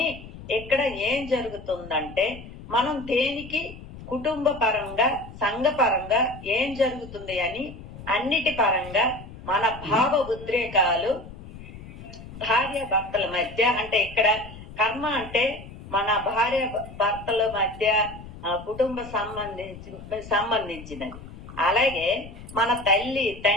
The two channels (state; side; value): noise; left; rumble, 15 dB below the sound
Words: ఇక్కడ ఏం జరుగుతుందంటే మనం దేనికి కుటుంబ పరంగా సంఘ పరంగా ఏం జరుగుతుంది అని అన్నిటి పరంగా మన భావ ఉద్రేకాలు భార్య భర్తల మధ్య అంటే ఇక్కడ కర్మ అంటే మన భార్య భర్తల మధ్య కుటుంబ సంబంధించినది. అలాగే మన తల్లి